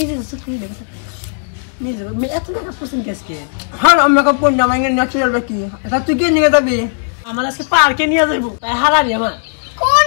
সুখী রে নিজে মে এত টাকা পছন্দ কেসকে হ্যাঁ মেকআপ কোন না মানে ন্যাচারাল দেখি এটা তুই কি নিয়ে যাবি আমার আজকে পার্কে নিয়ে যাইব তাই হারারি আমার কোন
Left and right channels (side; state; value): right; silent; digital silence